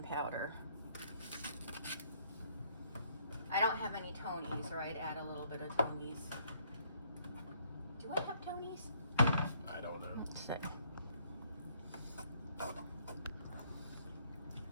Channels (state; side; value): inverted; both; correlation -0.66